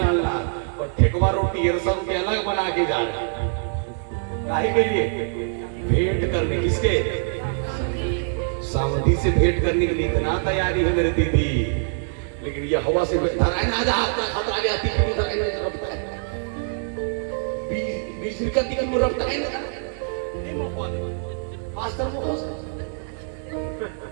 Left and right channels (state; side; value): silent; left; digital silence